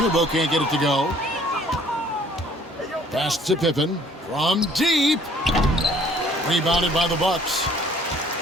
can't get it to go. Pass to Pippen from deep. Rebounded by the Bucks.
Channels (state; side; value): normal; both; correlation 0.58